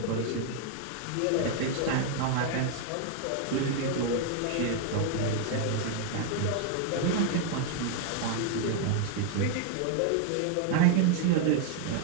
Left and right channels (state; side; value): different; both; correlation 0.00